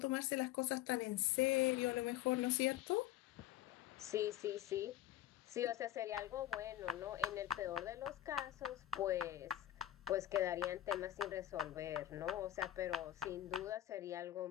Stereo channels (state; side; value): quieter; right; 13.4 dB